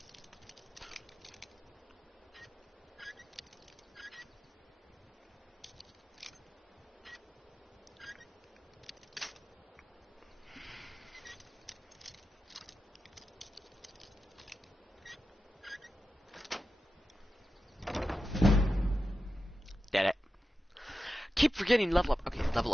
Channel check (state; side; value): normal; both; correlation 0.91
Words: Did it. Keep forgetting level up. Okay, level